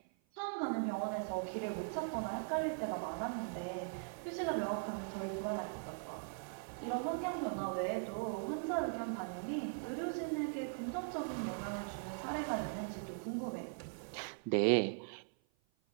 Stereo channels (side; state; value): left; silent; 51 dB below the other